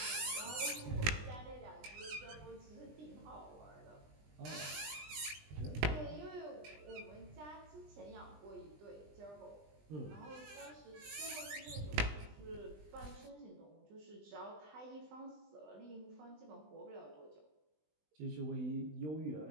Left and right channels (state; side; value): late; left; 20 ms